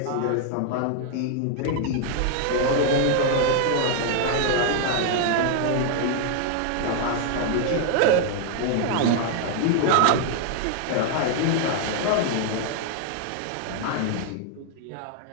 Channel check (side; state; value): both; different; correlation 0.00